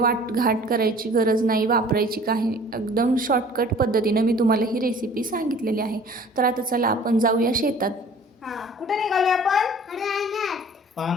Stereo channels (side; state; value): both; normal; correlation 0.49